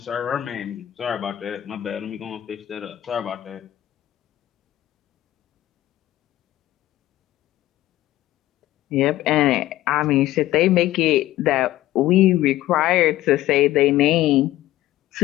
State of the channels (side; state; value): right; quieter; 14.9 dB